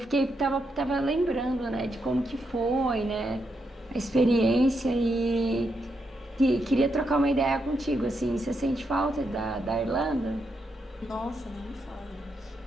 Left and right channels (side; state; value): both; normal; correlation 0.82